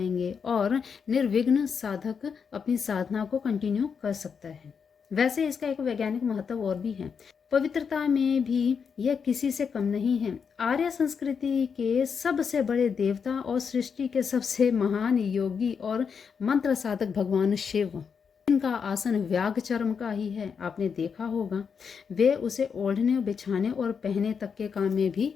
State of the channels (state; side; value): quieter; right; 6.3 dB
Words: और निर्विघ्न साधक अपनी साधना को कंटिन्यू कर सकता है। वैसे इसका एक वैज्ञानिक महत्व और भी है, पवित्रता में भी यह किसी से कम नहीं है। आर्य संस्कृति के सबसे बड़े देवता और सृष्टि के सबसे महान योगी और मंत्र साधक भगवान शिव, जिनका आसन व्याघ चर्म का ही है, आपने देखा होगा, वे उसे ओढ़ने, बिछाने और पहने तक के काम में भी